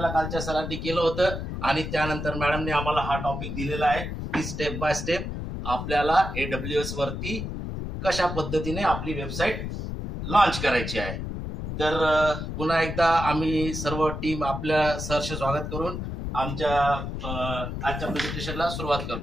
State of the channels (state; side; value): noise; left; rumble, 5 dB below the sound